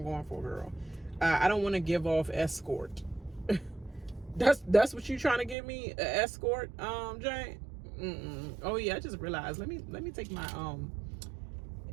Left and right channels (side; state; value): left; drops out; at 5.6 s